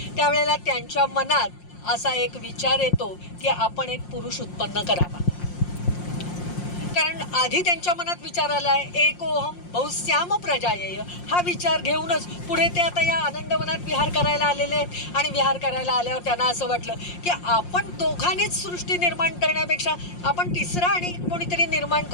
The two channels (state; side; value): late; right; 5.6 ms